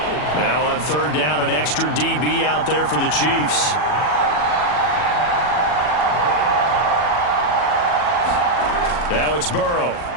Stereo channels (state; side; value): late; right; 40 ms